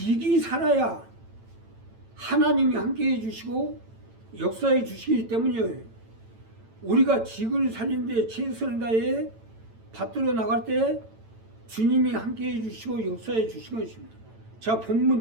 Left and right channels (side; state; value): left; late; 9.0 ms